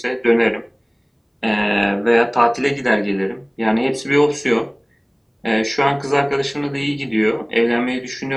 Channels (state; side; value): identical; both; correlation 1.00